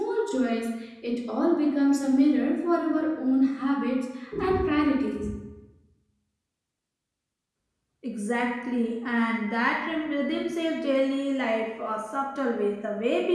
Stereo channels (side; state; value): both; identical; correlation 1.00